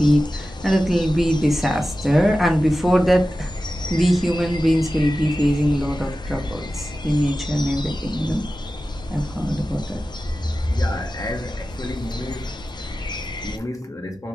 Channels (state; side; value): normal; both; correlation 0.94